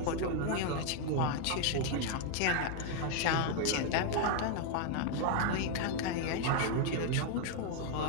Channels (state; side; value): different; both; correlation 0.00